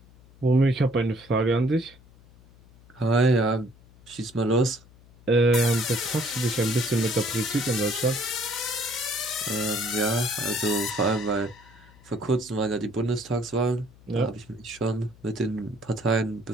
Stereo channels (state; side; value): noise; left; hum, 25 dB below the sound